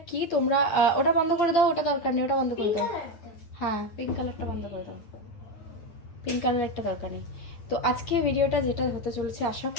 কি তোমরা ওটা বন্ধ করে দাও, ওটা দরকার নেই, ওটা বন্ধ করে দাও। হ্যাঁ, পিঙ্ক কালারটা বন্ধ করে দাও, পিঙ্ক কালার একটা দরকার নেই। তো আজকে ভিডিওটা যেটা হতে চলেছে, আশা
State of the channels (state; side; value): late; right; 8.8 ms